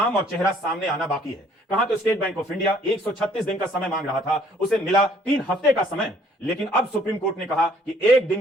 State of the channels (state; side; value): normal; both; correlation 0.61